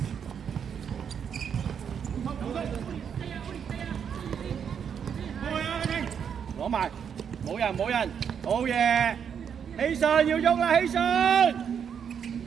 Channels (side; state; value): left; quieter; 7.6 dB